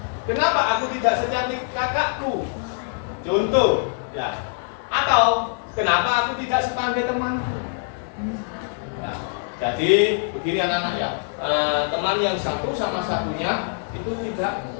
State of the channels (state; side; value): silent; right; digital silence